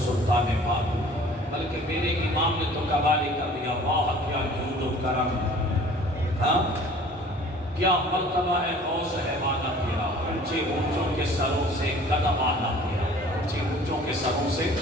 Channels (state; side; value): normal; both; correlation 0.49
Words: بابو، بلکہ میرے امام نے تو قوالی کر دیا، واہ کیا جود و کرم، ہاں کیا مرتبہ ہے غوث ہے والا تیرا، اونچے اونچوں کے سروں سے قدم آنا تیرا، اونچے اونچوں کے سروں سے